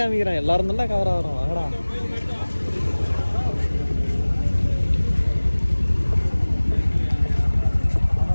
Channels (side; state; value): both; inverted; correlation -1.00